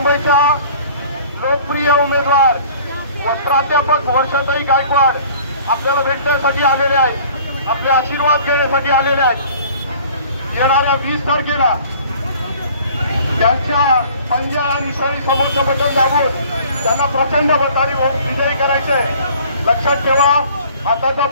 लोकप्रिय उमेदवार व प्राध्यापक वर्षाताई गायकवाड आपल्याला भेटण्यासाठी आलेले आहेत, आपले आशीर्वाद घेण्यासाठी आलेले आहेत। येणाऱ्या 20 तारखेला त्यांच्या पंजा आणि सरी समोरचं बटन दाबून त्यांना प्रचंड मताने विजयी करायचे। लक्षात ठेवा, हाताचा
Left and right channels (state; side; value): inverted; both; correlation -0.50